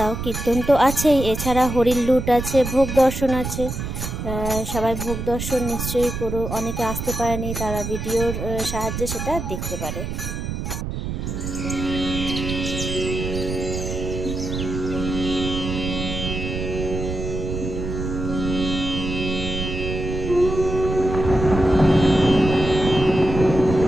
কীর্তন তো আছেই, এছাড়া হরির লুট আছে, ভোগ দর্শন আছে। সবাই ভোগ দর্শন নিশ্চয়ই করো। অনেকে আসতে পারেনি, তারা ভিডিওর সাহায্যে সেটা দেখতে পারে।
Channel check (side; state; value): right; noise; rumble, 5 dB below the sound